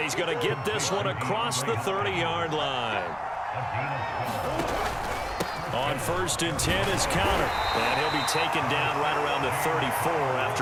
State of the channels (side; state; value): both; identical; correlation 1.00